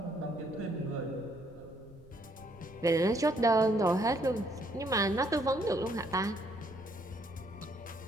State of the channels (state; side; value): noise; right; rumble, 24 dB below the sound